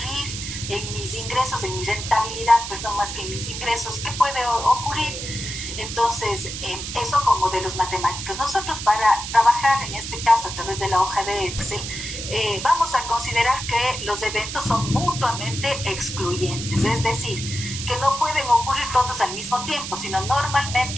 en mis ingresos, en mi rentabilidad, perdón, más que en mis ingresos? ¿Qué puede ocurrir? Entonces, eso con modelos matemáticos. Nosotros, para trabajar en este caso a través de la hoja de Excel, vamos a considerar que los eventos son mutuamente excluyentes, es decir, que no pueden ocurrir todos al mismo tiempo, sino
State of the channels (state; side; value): noise; right; hiss, 7 dB below the sound